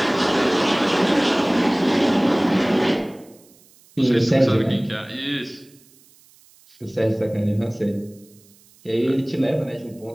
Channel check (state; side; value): noise; right; hiss, 29 dB below the sound